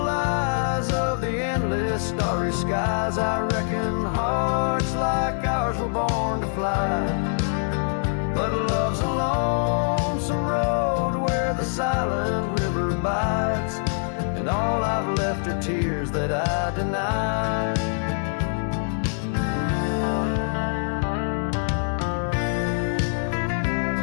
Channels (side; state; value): right; silent; 60 dB below the other